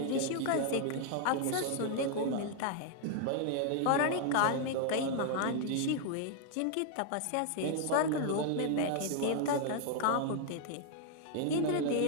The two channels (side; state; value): both; different; correlation 0.00